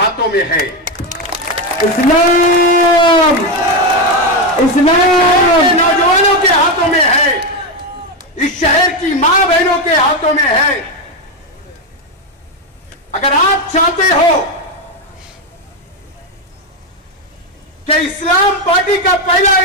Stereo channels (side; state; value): both; normal; correlation 0.09